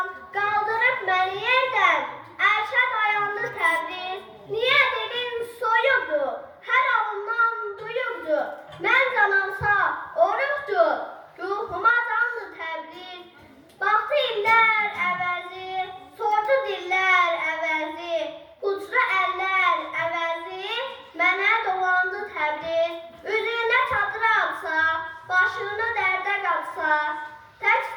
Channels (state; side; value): identical; both; correlation 1.00